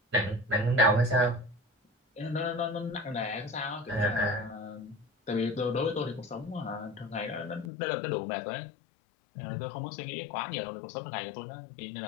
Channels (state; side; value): drops out; right; at 7.7 s